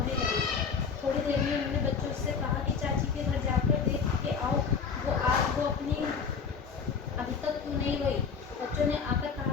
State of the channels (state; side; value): quieter; right; 5.9 dB